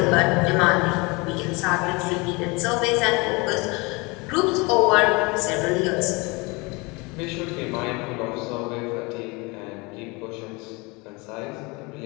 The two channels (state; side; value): quieter; right; 26.5 dB